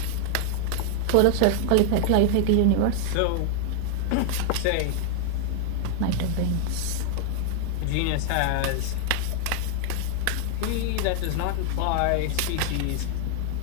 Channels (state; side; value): different; both; correlation 0.00